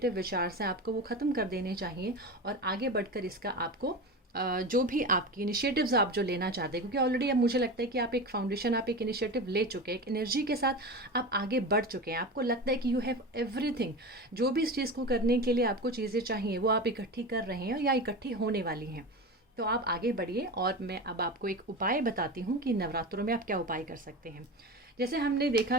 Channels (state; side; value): normal; both; correlation 0.27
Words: विचार हैं आपको वो ख़त्म कर देने चाहिए, और आगे बढ़कर इसका आपको जो भी आपकी इनिशिएटिव्स आप जो लेना चाहते हैं, क्योंकि ऑलरेडी अब मुझे लगता है कि आप एक फाउंडेशन, आप एक इनिशिएटिव ले चुके हैं, एक एनर्जी के साथ आप आगे बढ़ चुके हैं, आपको लगता है कि यू हैव एवरीथिंग, जो भी इस चीज़ को करने के लिए आपको चीज़ें चाहिए वो आप इकट्ठी कर रहे हैं या इकट्ठी होने वाली हैं। तो आप आगे बढ़िए, और मैं अब आपको एक उपाय बताती हूँ कि नवरात्रों में आप क्या उपाय कर सकते हैं। जैसे हमने देखा